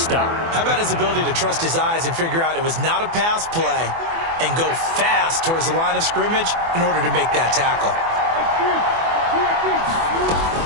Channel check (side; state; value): left; late; 24 ms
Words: How about his ability to trust his eyes and figure out it was not a pass play and go fast towards the line of scrimmage in order to make that tackle.